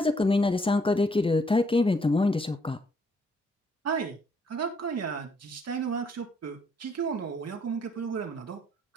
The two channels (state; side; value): normal; both; correlation 0.69